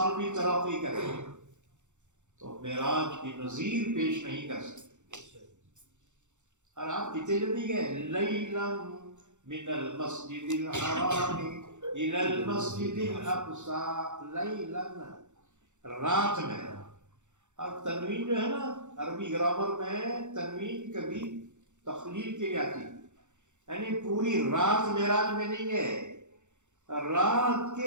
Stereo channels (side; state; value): left; late; 0.84 ms